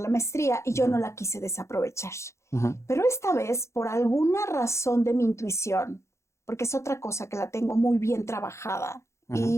maestría y yo no la quise desaprovechar. Pero esta vez, por alguna razón de mi intuición, porque es otra cosa que la tengo muy bien trabajada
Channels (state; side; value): late; right; 0.14 ms